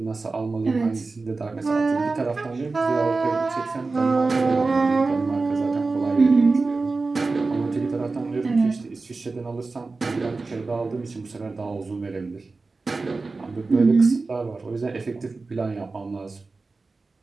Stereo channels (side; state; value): left; quieter; 3.8 dB